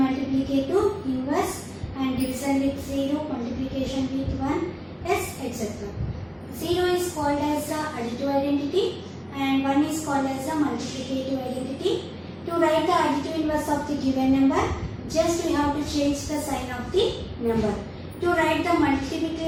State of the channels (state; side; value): identical; both; correlation 1.00